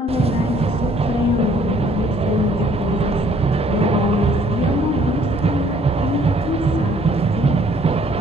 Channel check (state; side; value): normal; both; correlation 0.61